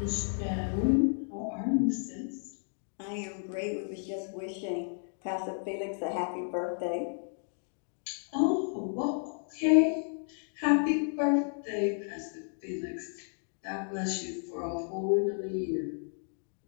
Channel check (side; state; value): right; silent; 56 dB below the other